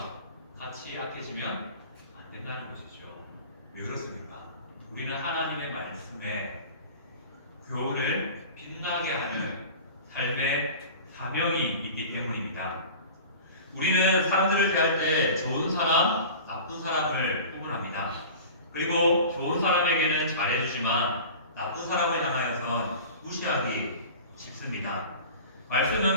같이 악해지면 안 된다는 것이죠. 왜 그렇습니까? 우리는 하나님의 말씀에 교훈을 빛나게 하는 삶의 사명이 있기 때문입니다. 우리는 사람들을 대할 때 좋은 사람, 나쁜 사람을 구분합니다. 그리고 좋은 사람에게는 잘해주지만 나쁜 사람을 향하여선 무시하기 쉽습니다.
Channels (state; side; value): inverted; both; correlation -0.38